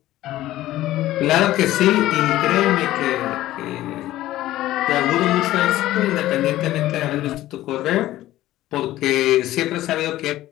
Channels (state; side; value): quieter; right; 15.1 dB